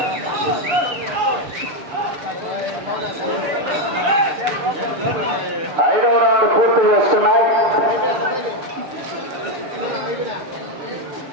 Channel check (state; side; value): late; left; 7.1 ms